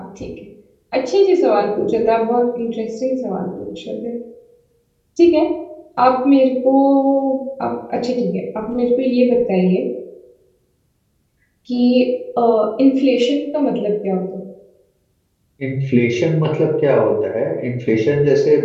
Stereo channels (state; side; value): identical; both; correlation 1.00